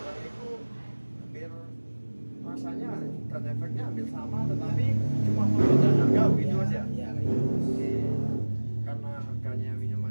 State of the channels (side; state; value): both; inverted; correlation -1.00